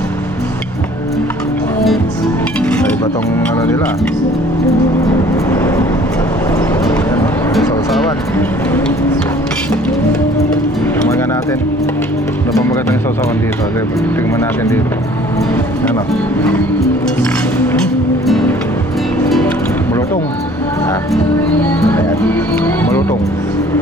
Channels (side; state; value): both; normal; correlation 0.53